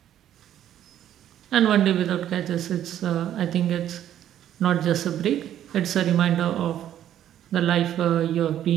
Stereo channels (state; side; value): quieter; left; 11.1 dB